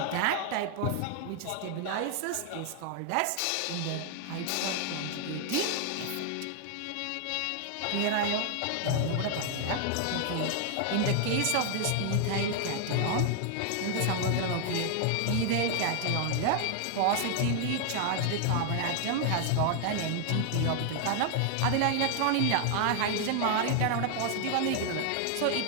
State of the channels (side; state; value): both; different; correlation 0.00